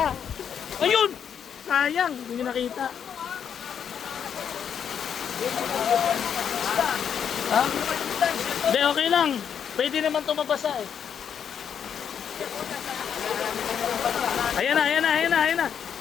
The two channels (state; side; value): quieter; right; 8.0 dB